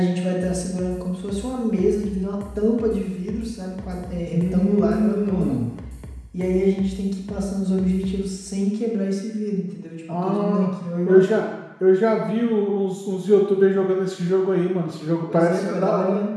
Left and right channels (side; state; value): both; identical; correlation 1.00